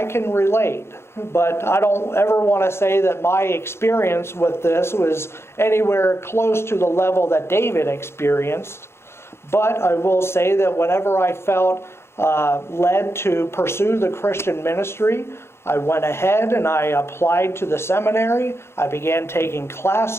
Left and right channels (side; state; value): right; late; 0.12 ms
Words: can relate, but I don't ever want to say that my experience with this was anywhere close to the level that David experienced. But I will say that whenever I felt led to pursue the Christian ministry, I went ahead and I applied to the seminary. I began taking